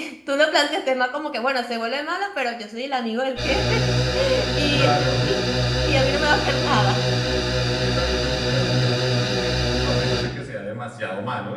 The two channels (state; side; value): identical; both; correlation 1.00